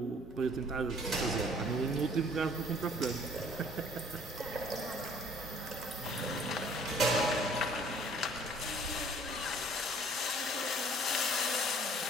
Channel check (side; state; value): both; normal; correlation 0.55